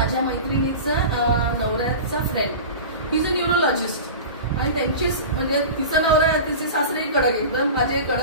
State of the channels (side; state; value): both; inverted; correlation -0.32